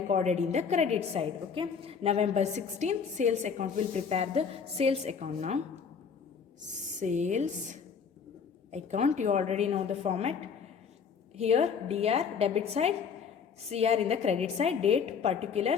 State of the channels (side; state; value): right; quieter; 6.4 dB